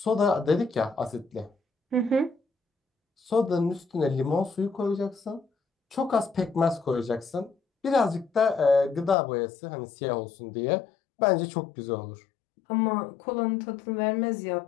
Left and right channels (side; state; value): right; drops out; at 9.2 s